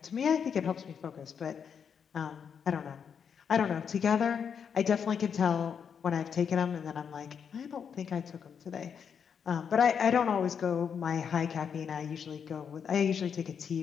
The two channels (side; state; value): right; quieter; 7.1 dB